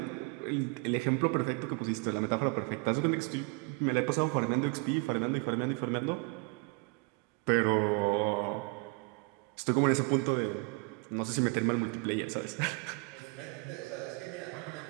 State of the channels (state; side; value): quieter; left; 29.7 dB